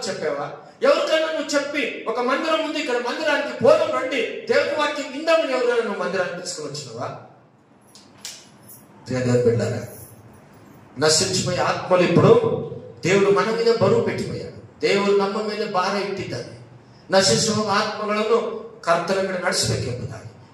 చెప్పావా? ఎవరికైనా నువ్వు చెప్పి ఒక మందిరం ఉంది, ఇక్కడ మందిరానికి పోదాం రండి, దేవుని వాక్యం విందామని ఎవరైనా నువ్వు మందిరానికి తీసుకుని వచ్చినావా? బిడ్డారా, నశించిపోయే ఆత్మలు ఇప్పుడు దేవుడు మన మీద బరువు పెట్టిపోయాడు. దేవుడు ನಮ್ಮ ಮೇಲೆ ಭಾರ ಇಟ್ಟಿದ್ದಾನೆ. ನಶಿಸುವ ಆತ್ಮಗಳನ್ನು ಕರ್ತನ ಕಡೆ ನಡೆಸಬೇಕೆಂಬುದಾಗಿ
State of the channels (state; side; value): identical; both; correlation 1.00